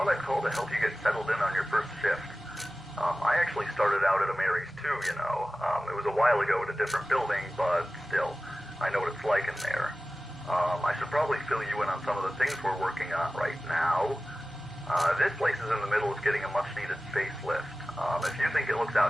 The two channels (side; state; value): both; normal; correlation 0.96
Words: I'd call to help you get settled in on your first shift. I actually started out at a Mary's too, you know. It was a while ago at a different building, but still, I know what it's like in there. I should probably fill you in on some of the things we're working on right now. This place is in the middle of getting a much-needed facelift. If you think it looks